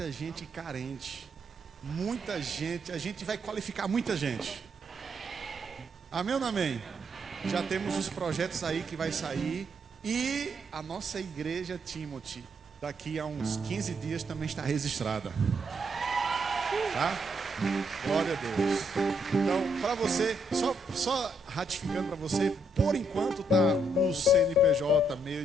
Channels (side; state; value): both; normal; correlation 0.75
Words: gente carente. Muita gente, a gente vai qualificar muita gente. Amém ou não amém? Já temos os projetos aí que vai sair. E a nossa igreja Timothy, daqui a uns 15 dias também está registrada. Tá? Glória a Deus. Então, para você, só ratificando para você, por enquanto tá o CNPJ